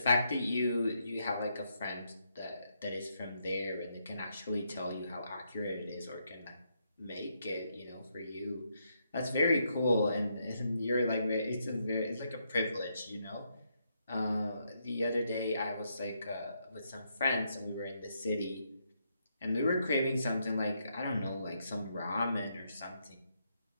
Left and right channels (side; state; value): both; inverted; correlation -0.78